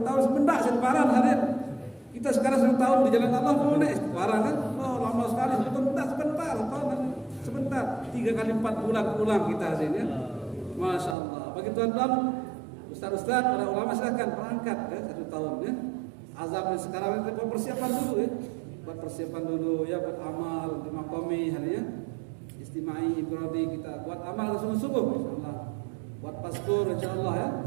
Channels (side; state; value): left; drops out; at 11.2 s